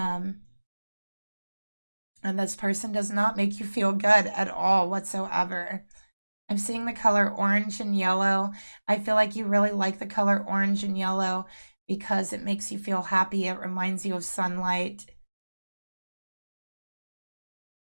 and this person does not make you feel good at all whatsoever. I'm seeing the color orange and yellow. I feel like you really like the color orange and yellow because it makes you feel happy. It reminds you of sunlight.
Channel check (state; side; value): inverted; both; correlation -1.00